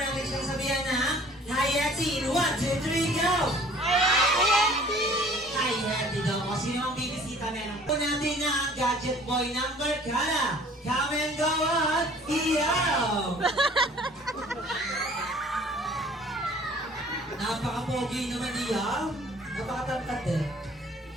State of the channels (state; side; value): normal; both; correlation 0.52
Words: natin siyang sabihan na Hi, Hetty! In 1, 2, 3, go! Hi, Hetty daw. O sino ang bibisita meron? Po natin na ang gadget boy number Kala. Come and go on! Iyaw! Napaka-pogi naman iyaw. Napaka-tangkad eh.